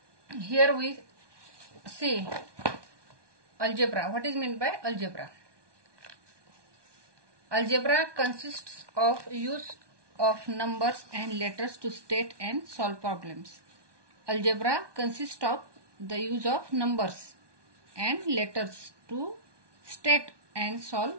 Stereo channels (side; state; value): left; late; 1.2 ms